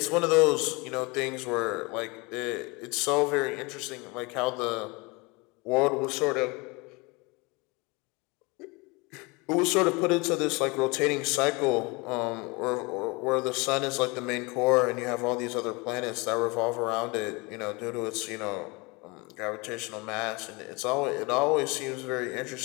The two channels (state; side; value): quieter; right; 26.8 dB